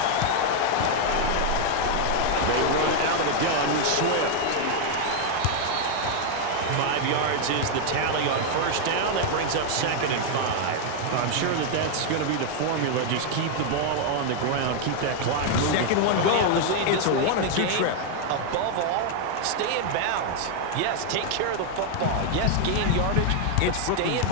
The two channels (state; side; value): different; both; correlation 0.00